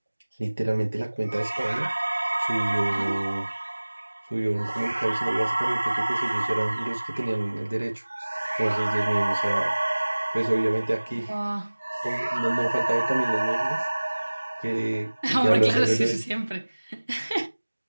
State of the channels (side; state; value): both; inverted; correlation -1.00